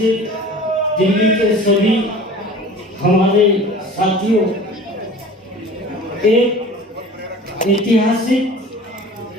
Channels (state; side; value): normal; both; correlation 0.42